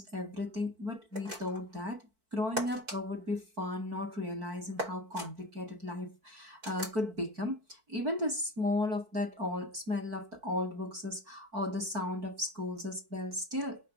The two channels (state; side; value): late; left; 4.5 ms